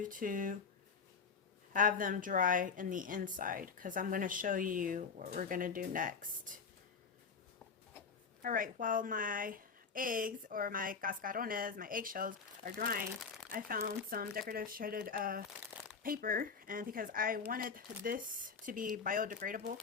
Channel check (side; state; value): right; quieter; 5.6 dB